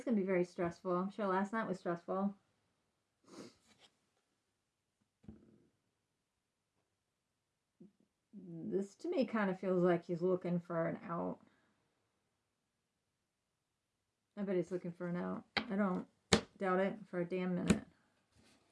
going to be very stressful. I'm sure last night was stressful. This to me kind of feels like he's looking for an out. I bet he's looking for an out. I don't doubt it for a damn minute.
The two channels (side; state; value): both; identical; correlation 1.00